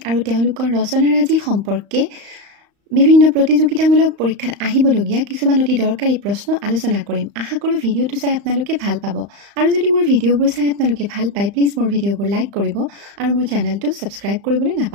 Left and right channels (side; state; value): left; late; 35 ms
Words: আৰু তেওঁলোকৰ ৰচনাৰাজি সম্পৰ্কে বিভিন্ন প্ৰতিযোগিতামূলক পৰীক্ষাত আহিবলগীয়া কিছুমান অতি দৰকাৰী প্ৰশ্ন আলোচনা কৰিম। আশা কৰোঁ ভিডিঅ'টো চাই আপোনালোকে ভাল পাব। আৰু যদি মোৰ ভিডিঅ'বোৰ চাই আপোনালোকে ভাল পায় প্লিজ মোৰ ভিডিঅ'বোৰ লাইক কৰিব আৰু মোৰ চেনেলটো ছাবস্ক্ৰাইব কৰিবলৈ